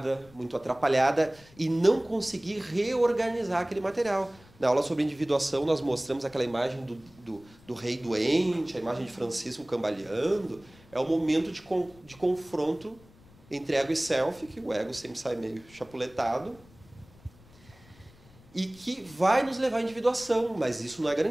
muito atrapalhada e não conseguir reorganizar aquele material. Na aula sobre individuação, nós mostramos aquela imagem do rei doente, a imagem de Francisco cambaleando. É o momento de confronto entre ego e self, que o ego sempre sai meio chapuletado, e que vai nos levar à individuação, mas isso não é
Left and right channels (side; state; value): left; noise; rumble, 25 dB below the sound